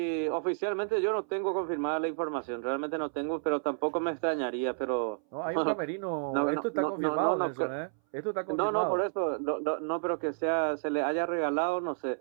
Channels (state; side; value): silent; left; 57 dB below the other